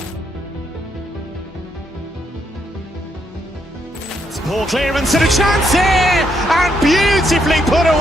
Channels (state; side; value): normal; both; correlation 0.76